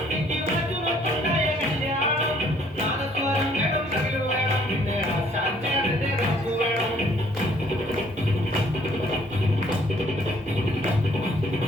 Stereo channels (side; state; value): both; normal; correlation 0.61